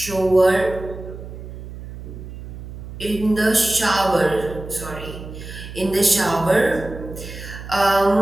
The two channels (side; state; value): right; noise; hum, 12 dB below the sound